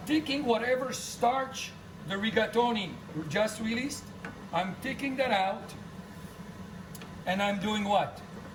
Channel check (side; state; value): both; identical; correlation 1.00